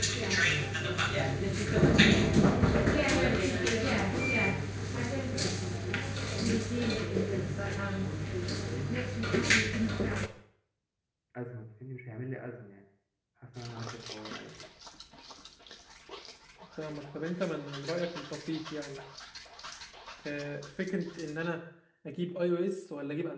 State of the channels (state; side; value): identical; both; correlation 1.00